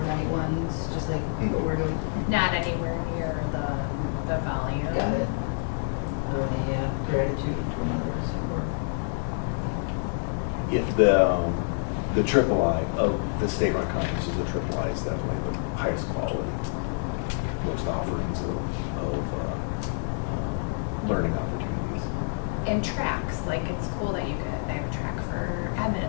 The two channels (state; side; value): silent; right; 60 dB below the other